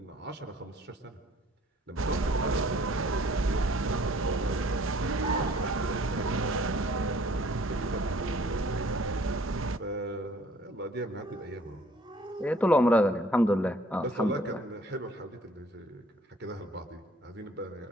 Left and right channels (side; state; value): both; normal; correlation 0.56